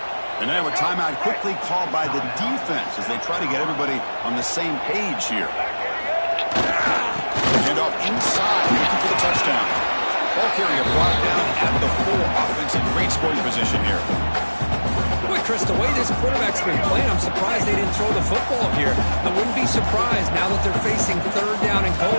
And now a timeout quickly called by the defense as they try to get everybody on the same page here. Hand off inside, looking for the touchdown. Ball carrier brought down at the 4. Offense in great scoring position here. Boy, Chris, the way this quarterback's been playing, I'm surprised they didn't throw the football here. I wouldn't be surprised now that they're facing 3rd down and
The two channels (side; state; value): both; inverted; correlation -1.00